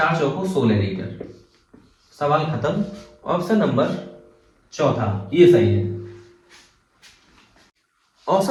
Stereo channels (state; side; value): identical; both; correlation 1.00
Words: चौको 16 लीटर। सवाल खत्म। ऑप्शन नंबर चौथा ये सही है।